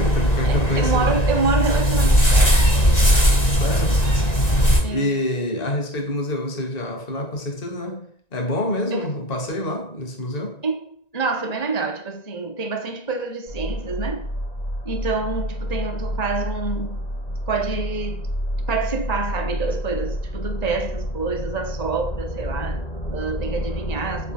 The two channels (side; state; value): right; late; 1.9 ms